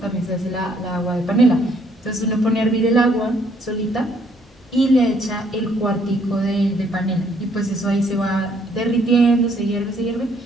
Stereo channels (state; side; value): normal; both; correlation 0.66